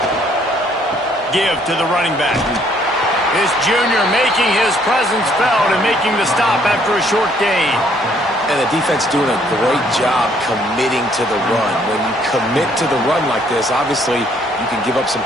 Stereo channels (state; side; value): normal; both; correlation 0.65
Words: Give to the running back. This junior making his presence felt and making the stop after a short gain. And the defense doing a great job committing to the run. When you commit to the run like this, obviously you can give up some